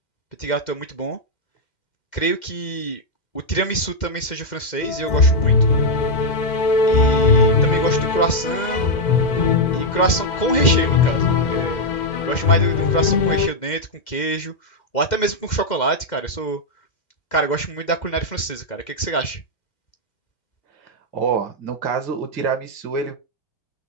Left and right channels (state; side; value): late; right; 2.1 ms